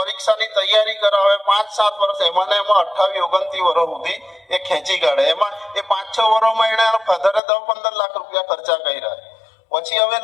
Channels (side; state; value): right; drops out; at 7.4 s